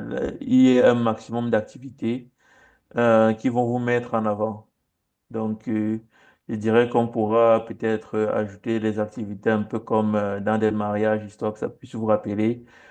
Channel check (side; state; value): both; identical; correlation 1.00